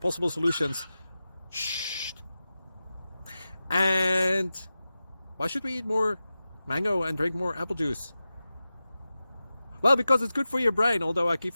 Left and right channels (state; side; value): inverted; both; correlation -0.94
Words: solutions. Shh. And why should we eat more mango and drink more apple juice? Well, because it's good for your brain, although I keep